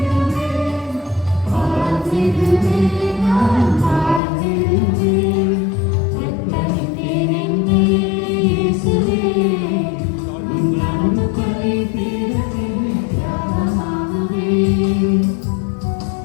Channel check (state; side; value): drops out; right; at 4.2 s